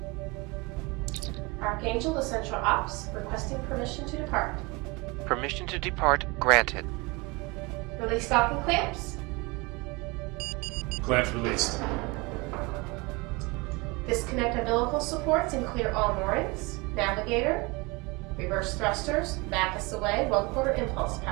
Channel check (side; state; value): left; quieter; 26.3 dB